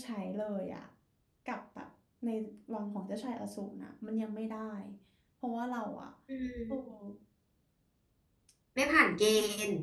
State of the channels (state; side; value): identical; both; correlation 1.00